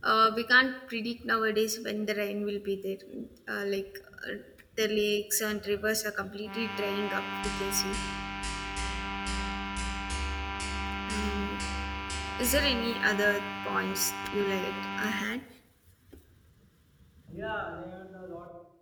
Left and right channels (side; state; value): both; identical; correlation 1.00